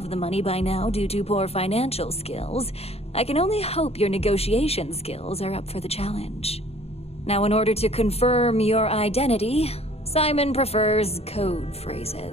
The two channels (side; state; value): right; late; 0.30 ms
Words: the money by now due to poor financial skills, I can only hope your negotiation skills are up for the challenge. Now, in order to confirm your identity, Simon prefers code